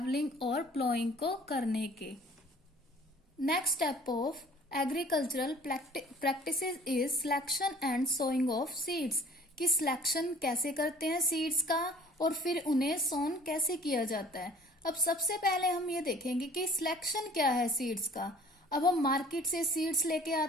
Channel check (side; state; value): both; normal; correlation 0.51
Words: और प्लोइंग को करने के। Next step of agricultural practices is selection and sowing of seeds, कि सिलेक्शन कैसे करते हैं सीड्स का और फिर उन्हें सोन कैसे किया जाता है। अब सबसे पहले हम ये देखेंगे कि सिलेक्शन क्या है सीड्स का। अब हम मार्केट से सीड्स लेके